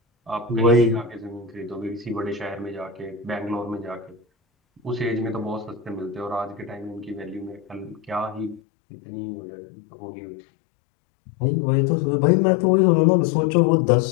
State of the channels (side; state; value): right; drops out; at 8.6 s